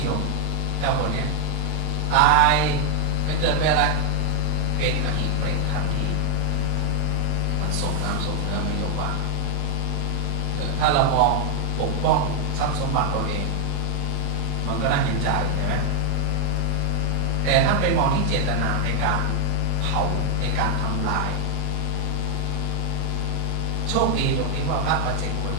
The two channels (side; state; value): both; different; correlation 0.00